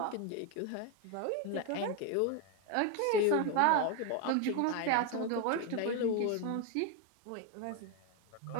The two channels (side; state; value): both; different; correlation 0.02